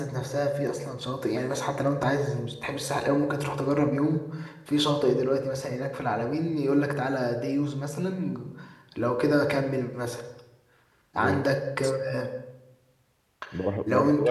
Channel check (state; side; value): identical; both; correlation 1.00